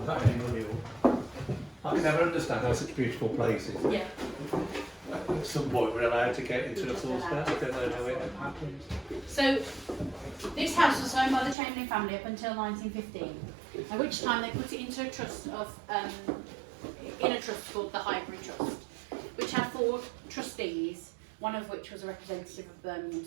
that anymore. I can never understand how such beautiful places. Yeah. At some point we're allowed to get into the full state. I don't know how it happened. So, this house was owned by the Chamberlain family up until 1915, at which time they put it into a trust of, in a trust called the Highbury Trust, which had 4 trustees, one of which was a representative of Birmingham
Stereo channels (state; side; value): drops out; left; at 11.6 s